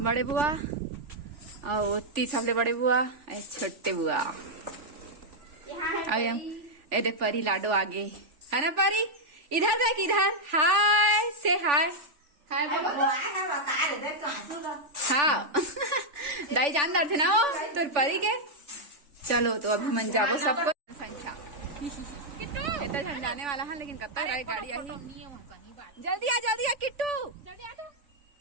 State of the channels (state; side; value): late; left; 3.4 ms